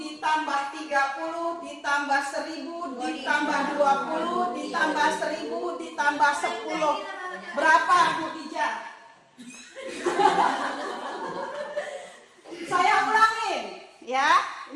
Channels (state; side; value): identical; both; correlation 1.00